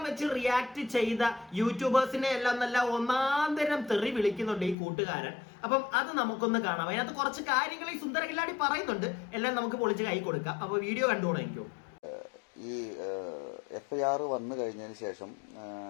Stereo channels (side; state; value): right; drops out; at 4.8 s